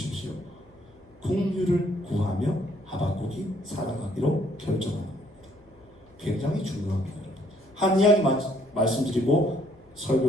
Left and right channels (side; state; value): left; noise; hum, 28 dB below the sound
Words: 긍휼을 구하며 하박국이 살아가기로 결정합니다. 굉장히 중요합니다. 한 이야기 말씀드리고